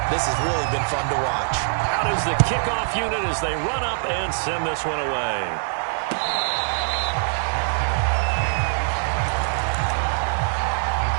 This has really been fun to watch. Out is the kickoff unit as they run up and send this one away.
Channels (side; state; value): left; silent; digital silence